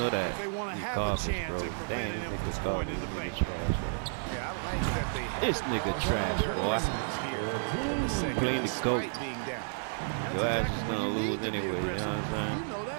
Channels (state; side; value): silent; left; digital silence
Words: that. If they want to You have garbage, a chance bro. at Damn, preventing this him from nigga's scoring garbage. in the This paint. nigga trash, bro. Yeah, I like that they have This nigga all trash, their boy. investments here in the second, Clean the goat. despite being down. That's Your ass exactly is when gonna you lose need to be anyway, you know aggressive. what I'm saying? You know